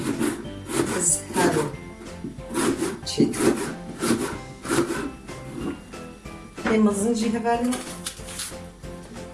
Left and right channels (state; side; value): identical; both; correlation 1.00